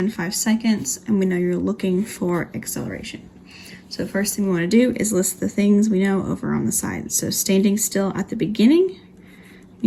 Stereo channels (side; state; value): both; identical; correlation 1.00